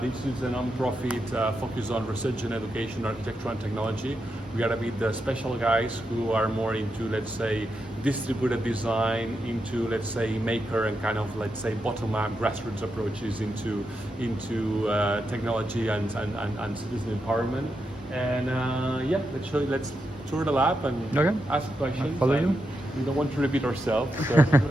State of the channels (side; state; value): both; normal; correlation 0.85